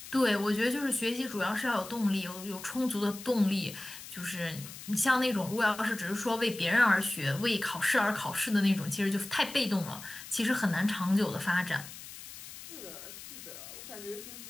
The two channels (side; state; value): left; noise; hiss, 14 dB below the sound